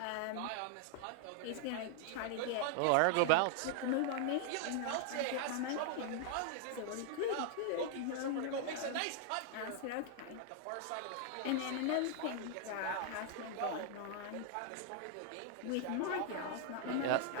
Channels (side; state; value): both; different; correlation 0.00